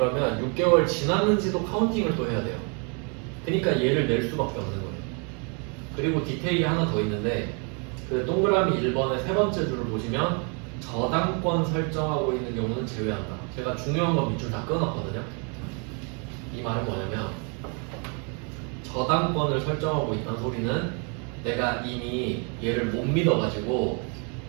6개월 지났는지도 카운팅을 또 해야 돼요. 그러니까 얘를 낼 수밖에 없는 거예요. 그리고 디테일이 하나 더 있는데 그 동그라미 1번의 세 번째 줄을 보시면 저당권 설정하고 있는 경우는 제외한다. 제가 중요한 건 밑줄 다 끊었거든요. 이 말은 뭐냐면 저당권을 설정하고 있다는 소리는 내가 이미 얘를 못 믿어가지고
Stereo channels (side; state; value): left; quieter; 36.6 dB